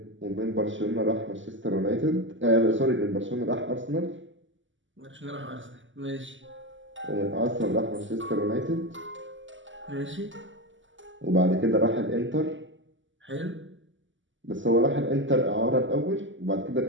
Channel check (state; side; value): late; left; 0.55 ms